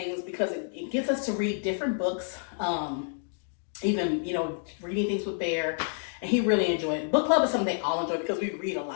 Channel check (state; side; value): silent; right; digital silence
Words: because it gets us to read different books, even, reading things with Bear, and he really enjoyed it. Book club is something they all enjoy because we read a